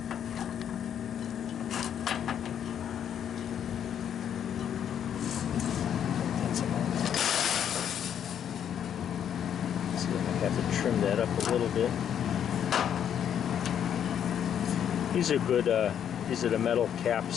See, I have to trim that up a little bit. These are good. These are the metal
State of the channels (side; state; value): right; quieter; 9.1 dB